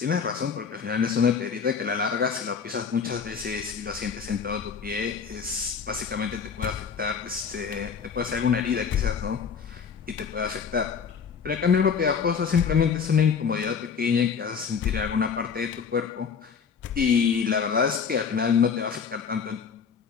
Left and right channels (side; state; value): right; quieter; 6.3 dB